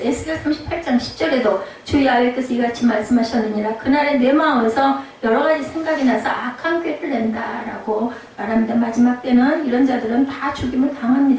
38장 10절에도 주 야훼께서 이같이 말씀하셨느니라. 그날에 내 마음에서 여러 가지 생각이 나서 악한 꾀를 낸다라고 말합니다. 마지막 때는 이런 자들은 다 죽임을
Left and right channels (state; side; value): identical; both; correlation 1.00